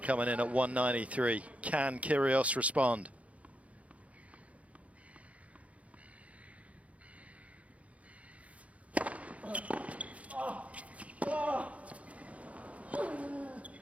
coming in at 193. Can Kyrgios respond?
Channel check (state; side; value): late; left; 0.066 ms